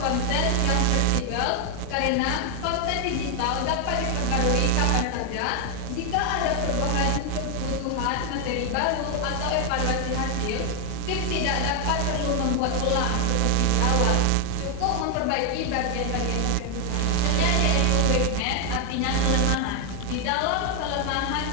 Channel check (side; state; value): both; different; correlation 0.01